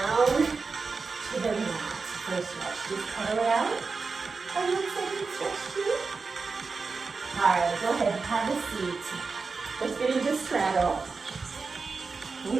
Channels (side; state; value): left; quieter; 4.5 dB